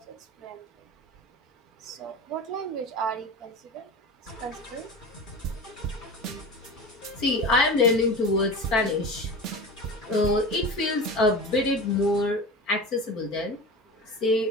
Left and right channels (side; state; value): both; normal; correlation 0.31